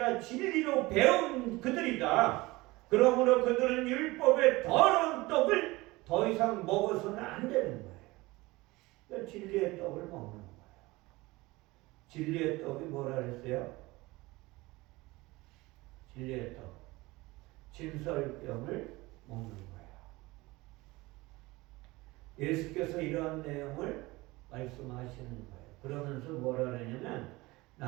진리로 배운 그들이다. 그러므로 그들은 율법의 더러운 떡을 더 이상 먹어서는 안 되는 거예요. 그러니까 진리의 떡을 먹는 거예요. 진리의 떡이 뭐라 그랬어요? 진리의 떡. 진설병을 먹는 거예요. 예수께서 이러한 내용을 말씀하시는 거예요. 그러면서 뭐라 그러냐면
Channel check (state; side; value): quieter; left; 21.2 dB